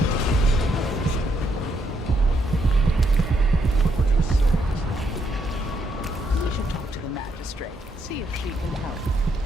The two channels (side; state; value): both; normal; correlation 0.76